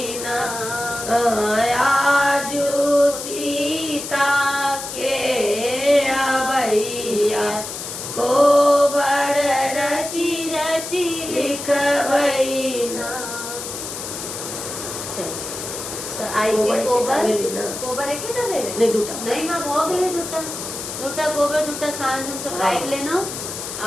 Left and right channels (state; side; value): noise; left; hiss, 8 dB below the sound